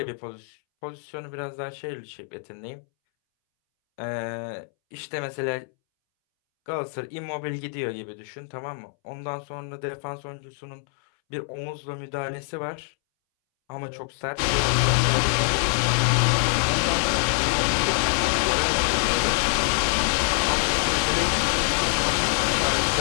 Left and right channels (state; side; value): silent; right; 62 dB below the other